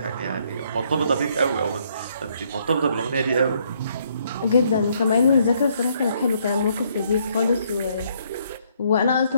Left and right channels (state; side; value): inverted; both; correlation -0.69